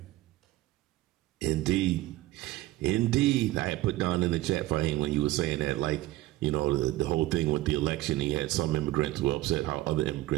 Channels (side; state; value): left; quieter; 17.0 dB